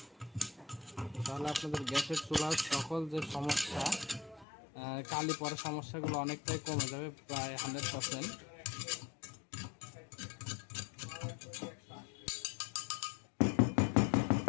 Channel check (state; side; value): drops out; right; at 4.5 s